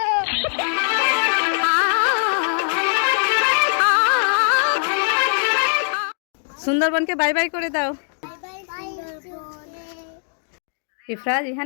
সুন্দরবনকে বাই বাই করে দাও। ইফরাজ,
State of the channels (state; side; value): silent; right; digital silence